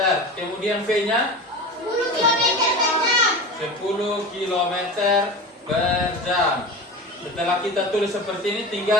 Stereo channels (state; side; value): normal; both; correlation 0.30